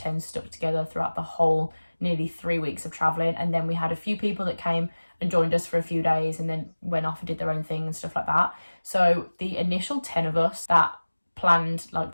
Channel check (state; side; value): inverted; both; correlation -1.00